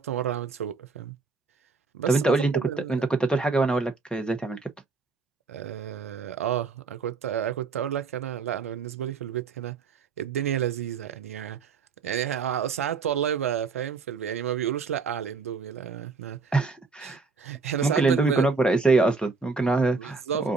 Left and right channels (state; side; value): quieter; left; 4.4 dB